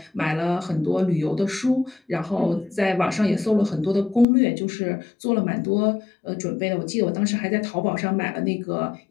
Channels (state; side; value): drops out; right; at 4.2 s